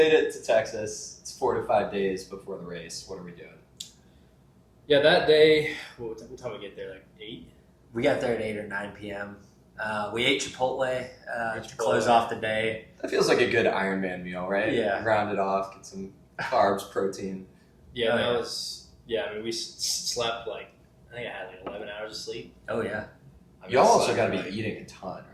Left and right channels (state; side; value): identical; both; correlation 1.00